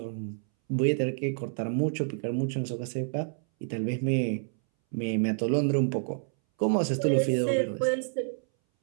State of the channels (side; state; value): left; silent; 59 dB below the other